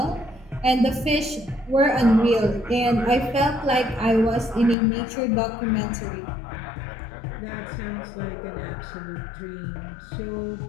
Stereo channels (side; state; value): right; drops out; at 4.8 s